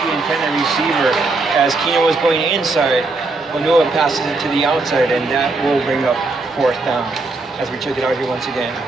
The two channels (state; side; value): quieter; left; 3.5 dB